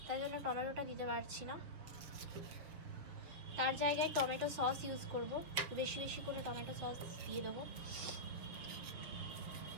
তাই জন্য টমেটোটা দিতে পারছি না। তার জায়গায় টমেটো সস ইউজ করব, বেশি বেশি করে টমেটো সস দিয়ে দেবো।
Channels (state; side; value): late; left; 6.7 ms